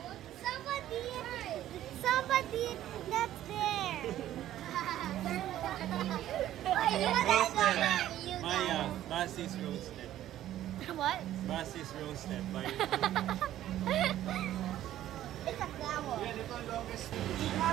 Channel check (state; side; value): quieter; left; 12.8 dB